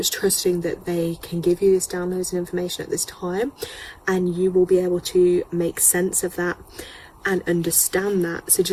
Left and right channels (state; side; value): identical; both; correlation 1.00